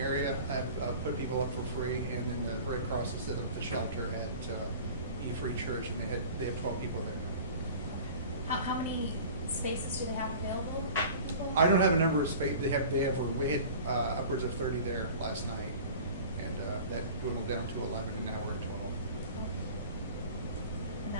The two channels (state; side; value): inverted; both; correlation -0.41